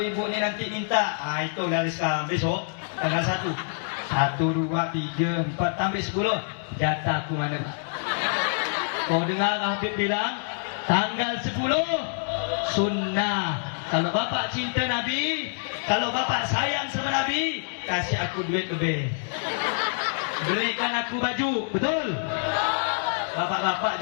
ni nanti minta, itu dari sekarang, besok tanggal 1, 1, 2, 3, 4 sampai 10 jatah aku mana. Kau dengar Habib bilang tanggal 10 sunnah. Kalau bapak cinta Nabi, kalau bapak sayang sama Nabi, kasih aku duit lebih, berikan aku baju. Betul? Bapak-bapak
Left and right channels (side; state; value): right; silent; digital silence